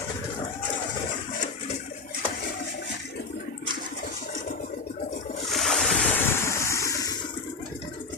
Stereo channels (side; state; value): right; quieter; 4.3 dB